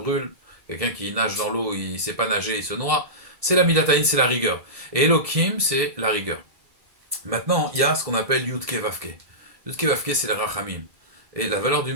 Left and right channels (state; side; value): late; left; 1.7 ms